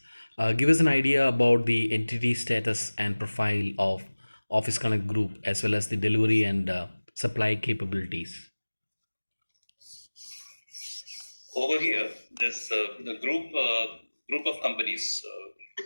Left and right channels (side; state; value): both; inverted; correlation -1.00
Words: give us an idea about the entity status and profile of Office Connect Group, as well as the delivery and supply capabilities. Over here, there's the group of companies.